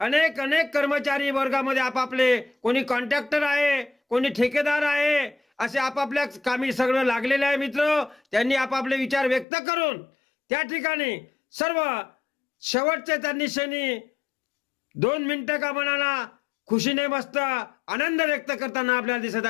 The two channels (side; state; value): right; drops out; at 9.5 s